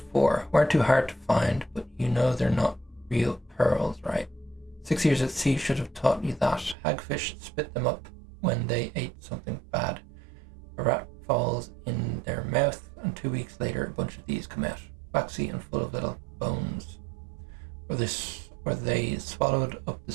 for. Weren't too hard to find, but you know they're not real pearls, right? 6 years at sea should have taught you that. Hagfish spit them up when they ate something bad. A rat falls in their mouth, and 2 weeks later a bunch of these come out. Waxy and full of little bones. or they swallowed up the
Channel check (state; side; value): drops out; left; at 6.8 s